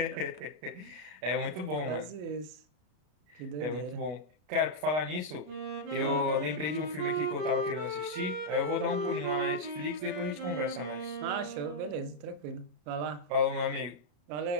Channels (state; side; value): late; left; 33 ms